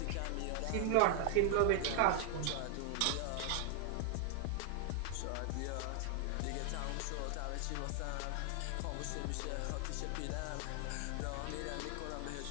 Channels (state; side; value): different; both; correlation 0.00